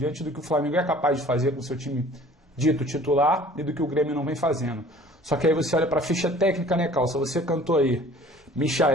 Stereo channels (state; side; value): normal; both; correlation 0.49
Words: do que o Flamengo é capaz de fazer com o seu time dito titular e do que o Grêmio não vem fazendo. Só que aí você olha para a ficha técnica, né, Calça? Você cantou aí